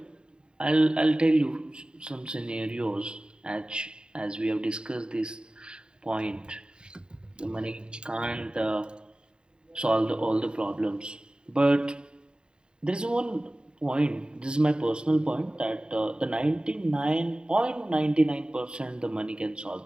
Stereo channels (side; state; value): left; late; 0.049 ms